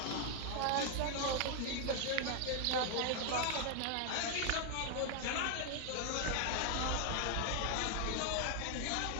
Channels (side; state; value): both; different; correlation 0.00